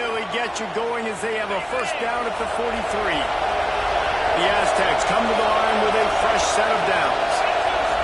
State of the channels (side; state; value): both; identical; correlation 1.00